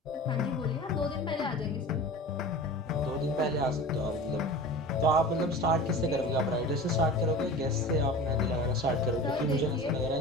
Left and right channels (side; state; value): both; normal; correlation 0.36